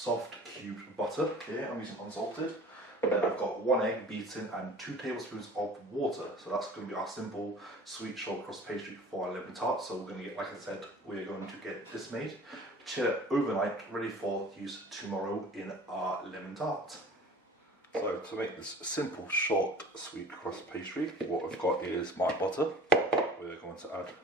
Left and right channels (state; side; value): normal; both; correlation 0.45